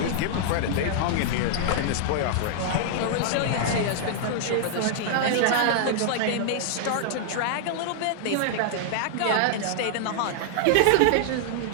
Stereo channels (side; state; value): both; different; correlation -0.01